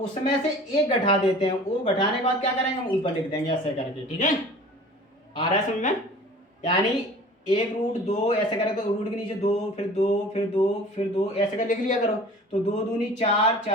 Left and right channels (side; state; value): both; normal; correlation 0.44